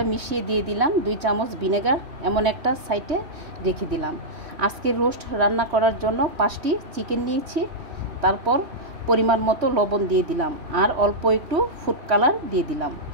মিশিয়ে দিয়ে দিলাম 2 চামচ ভিনেগার, এমন একটা সাইডে রেখে দিলাম। আজকে রোস্ট রান্না করার জন্য 5টি চিকেন নিয়েছি। তারপর পরিমাণ মতো লবণ দিয়ে দিলাম আর অল্প একটু ফুড কালার দিয়ে দিলাম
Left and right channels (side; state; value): left; late; 3.1 ms